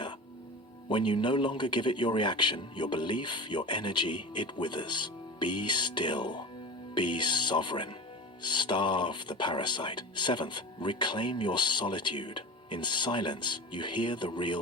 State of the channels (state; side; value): normal; both; correlation 0.32